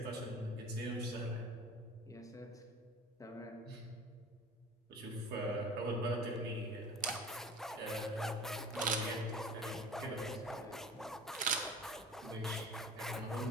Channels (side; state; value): both; normal; correlation 0.40